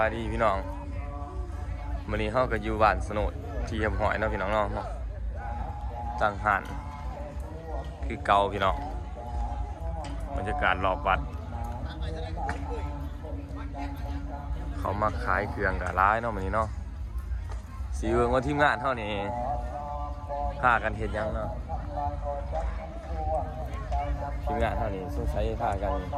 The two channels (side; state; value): both; identical; correlation 1.00